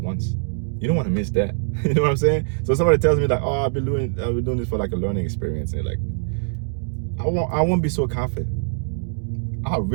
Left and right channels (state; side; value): silent; left; digital silence